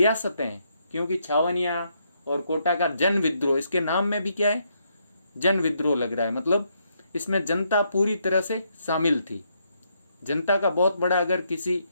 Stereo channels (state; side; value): inverted; both; correlation -0.76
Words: हैं, क्योंकि छावनिया और कोटा का जन विद्रोह, इसके नाम में भी क्या है, जन विद्रोह लग रहा है, मतलब इसमें जनता पूरी तरह से शामिल थी। जनता का बहुत बड़ा अगर किसी